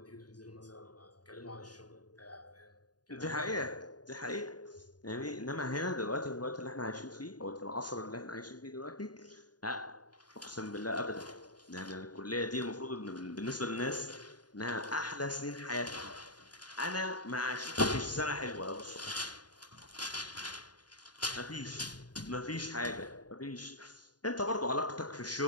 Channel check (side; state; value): right; late; 0.69 ms